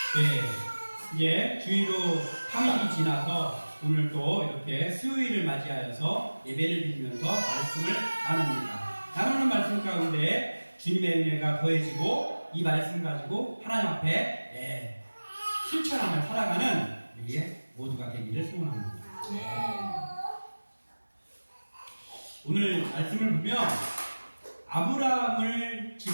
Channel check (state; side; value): inverted; both; correlation -1.00